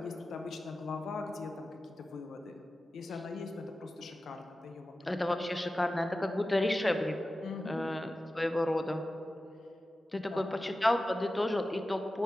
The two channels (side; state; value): both; normal; correlation 0.94